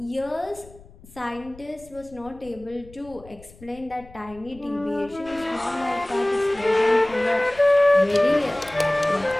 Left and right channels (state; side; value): noise; left; rumble, 22 dB below the sound